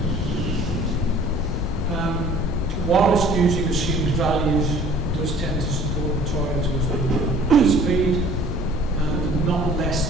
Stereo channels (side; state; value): both; normal; correlation 0.51